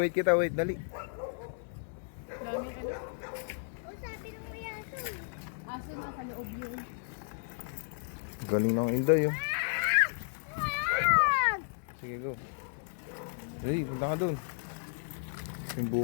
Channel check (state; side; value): silent; right; 55 dB below the other